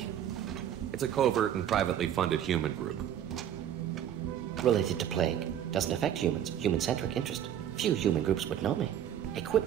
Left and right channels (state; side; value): quieter; left; 10.1 dB